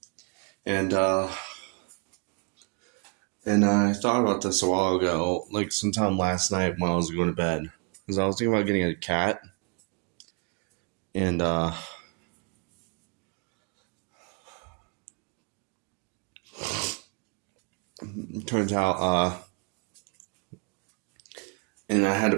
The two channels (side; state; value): left; quieter; 33.3 dB